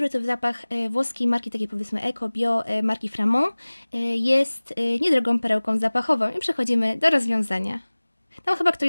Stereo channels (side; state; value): both; inverted; correlation -1.00